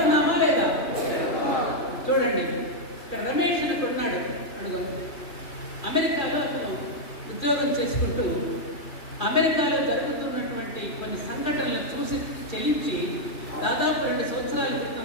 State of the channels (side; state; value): right; late; 2.9 ms